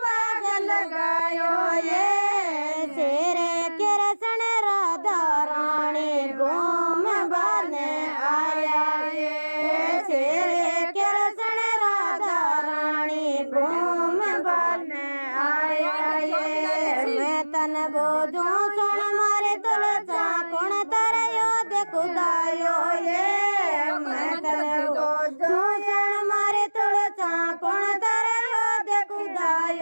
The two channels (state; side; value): inverted; both; correlation -1.00